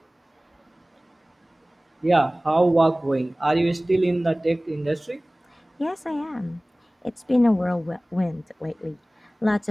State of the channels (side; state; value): both; normal; correlation 0.98